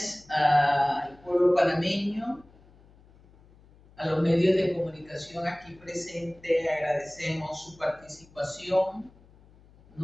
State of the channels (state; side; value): noise; left; hum, 27 dB below the sound